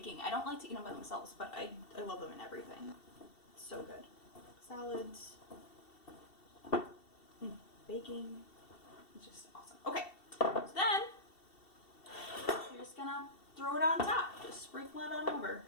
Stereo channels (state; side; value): late; right; 2.7 ms